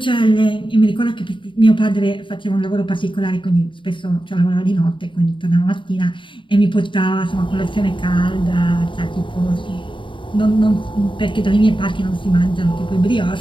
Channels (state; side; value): late; right; 0.24 ms